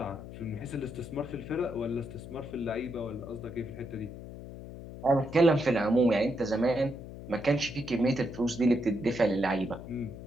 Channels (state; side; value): noise; left; hum, 12 dB below the sound